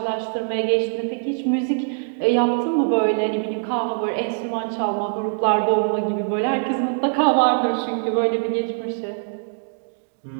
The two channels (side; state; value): left; silent; digital silence